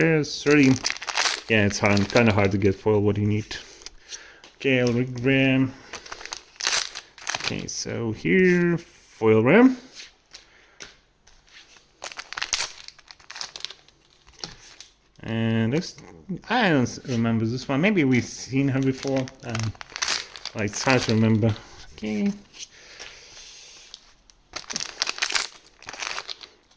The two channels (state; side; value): identical; both; correlation 1.00